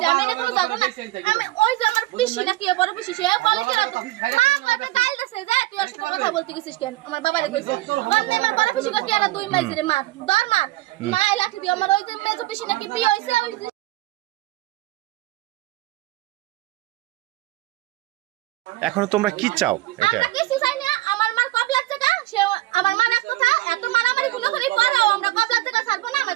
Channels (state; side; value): quieter; left; 17.6 dB